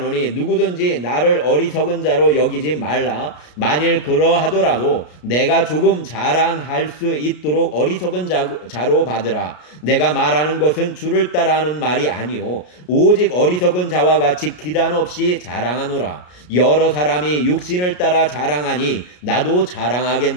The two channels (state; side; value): late; right; 33 ms